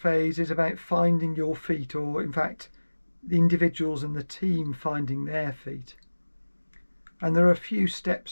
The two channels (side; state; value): both; inverted; correlation -1.00